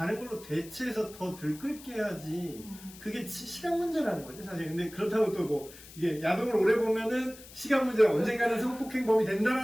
걸로 대체해서 더 들끓게 해야지. 그게 시간 문제라는 거지 사실. 근데 그렇다고 또 뭐 이게 야동을 오래 보면은 시간 문제가 언젠가는 성폭행범이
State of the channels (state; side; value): noise; left; hiss, 18 dB below the sound